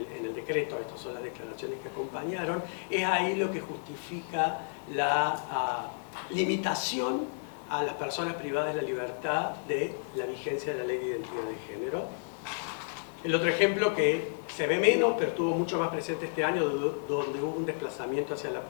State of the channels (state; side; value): silent; right; digital silence